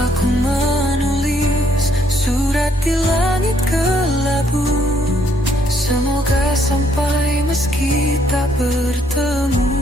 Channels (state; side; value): normal; both; correlation 0.69